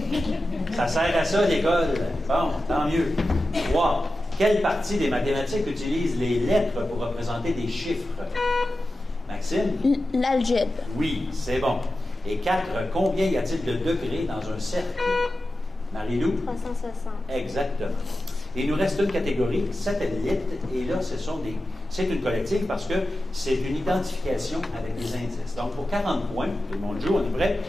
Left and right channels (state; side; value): normal; both; correlation 0.93